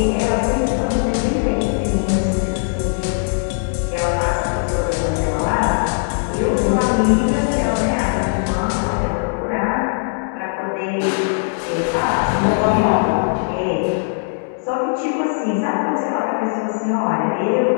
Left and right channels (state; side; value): silent; right; digital silence